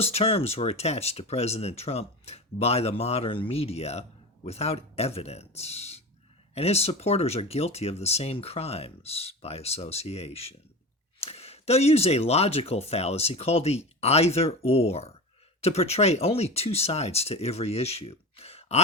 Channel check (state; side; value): normal; both; correlation 0.28